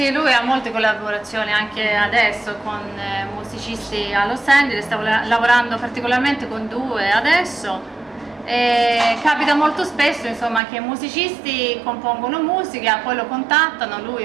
lui ha molte collaborazioni anche adesso con musicisti a Los Angeles, sta lavorando particolarmente con due adesso. E capita molto spesso, insomma, che musicisti compongono musica, poi lo contattano,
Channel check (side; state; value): left; drops out; at 10.6 s